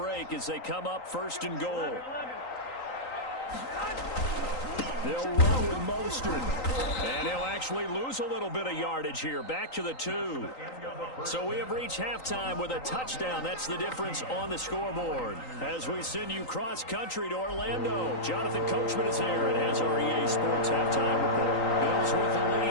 as they come up 1st and goal. They'll run with Mostert. And he'll actually lose a little bit of yardage here. Back to the 2. So we have reached halftime with a touchdown. That's the difference on the scoreboard. As we send you cross-country to Orlando, Jonathan Coachman is there and has our EA Sports halftime report. Bills with the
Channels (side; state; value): right; late; 3.9 ms